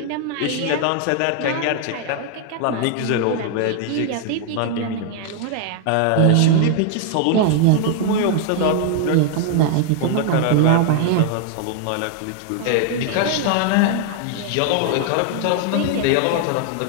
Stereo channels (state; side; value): different; both; correlation 0.00